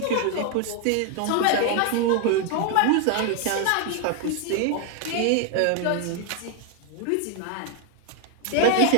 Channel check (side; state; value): both; different; correlation 0.01